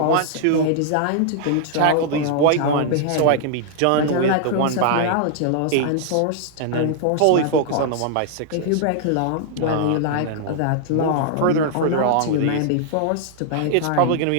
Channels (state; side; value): different; both; correlation -0.01